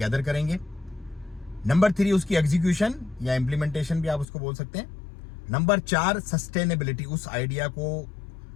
करेंगे। नंबर 3 उसकी एग्जीक्यूशन या इंप्लीमेंटेशन भी आप उसको बोल सकते हैं। नंबर 4 सस्टेनेबिलिटी, उस आइडिया को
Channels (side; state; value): right; drops out; at 4.2 s